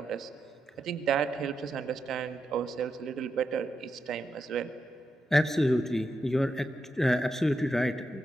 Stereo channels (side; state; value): both; normal; correlation 0.85